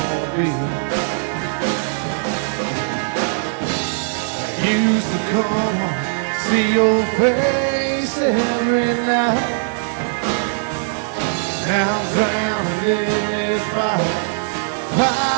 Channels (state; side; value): silent; left; digital silence